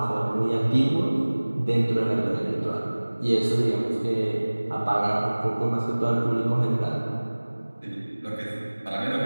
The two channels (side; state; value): both; inverted; correlation -1.00